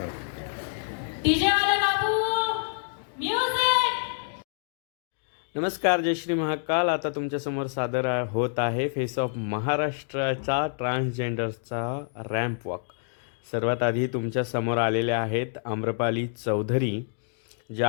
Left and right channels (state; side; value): silent; right; digital silence